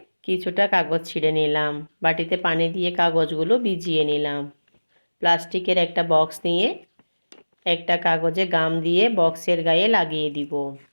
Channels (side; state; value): both; inverted; correlation -1.00